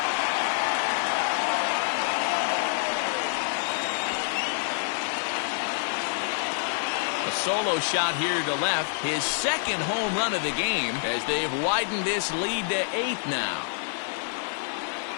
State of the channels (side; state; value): right; silent; digital silence